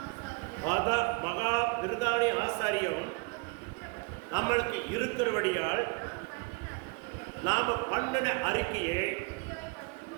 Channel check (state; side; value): quieter; left; 30.1 dB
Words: மகா விருதானி ஆசாரியம் நம்மளுக்கு இருக்கிறபடியால் நாம பண்ணின அறிக்கையை